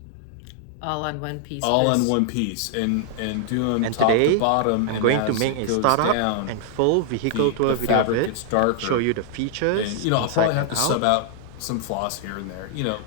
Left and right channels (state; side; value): different; both; correlation -0.01